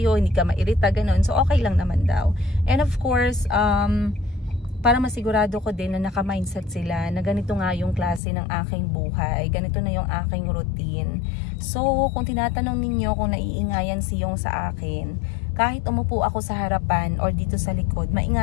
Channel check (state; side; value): drops out; right; at 8.2 s